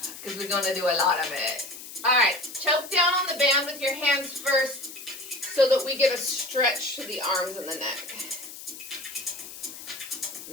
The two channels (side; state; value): left; noise; hiss, 13 dB below the sound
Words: because we're going to do a lot of it. All right, choke down on the band with your hands first so that we get a stretch to the arms and the neck.